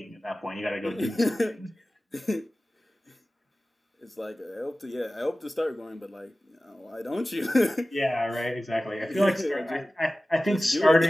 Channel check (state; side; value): normal; both; correlation 0.96